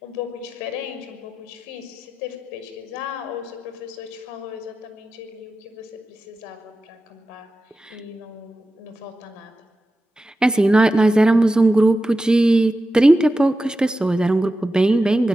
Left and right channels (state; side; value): normal; both; correlation 0.93